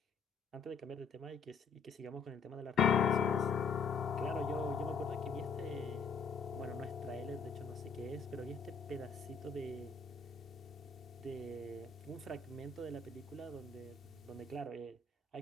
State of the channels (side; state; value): right; quieter; 5.2 dB